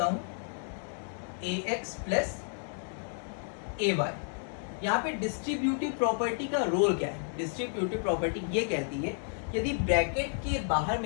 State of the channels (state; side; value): silent; right; 57 dB below the other